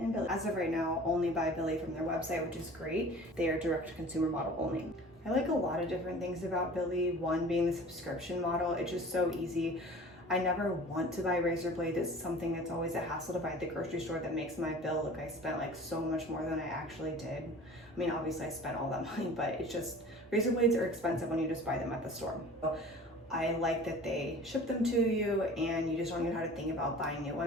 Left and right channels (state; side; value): normal; both; correlation 0.43